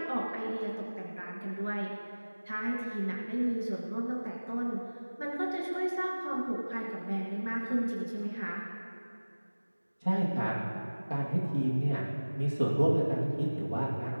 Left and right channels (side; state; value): both; inverted; correlation -1.00